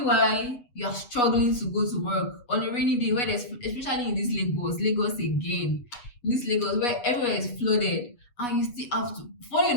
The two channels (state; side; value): late; right; 8.2 ms